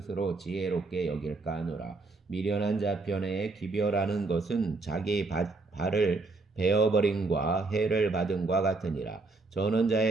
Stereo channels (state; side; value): quieter; left; 3.5 dB